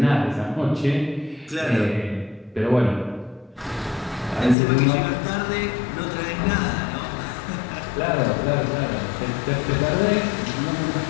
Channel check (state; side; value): drops out; right; at 4.5 s